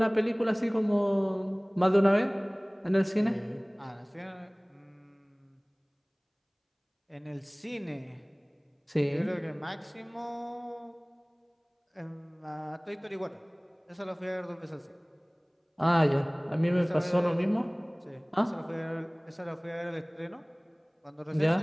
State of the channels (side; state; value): both; identical; correlation 1.00